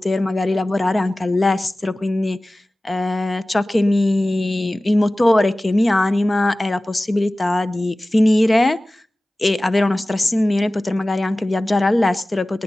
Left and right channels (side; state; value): both; normal; correlation 0.97